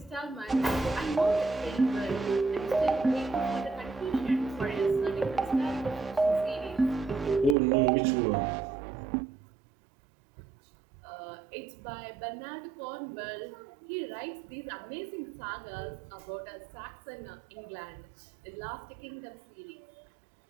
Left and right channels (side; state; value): left; drops out; at 7.6 s